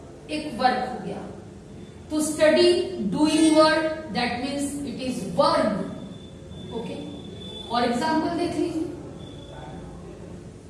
एक वर्ब हो गया. तो study doing word, that means it is verb. Okay, और एग्जाम्पल देख लीजिए.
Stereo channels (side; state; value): both; identical; correlation 1.00